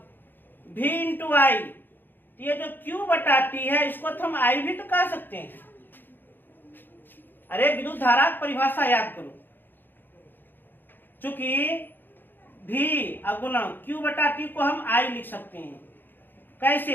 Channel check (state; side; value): late; right; 0.094 ms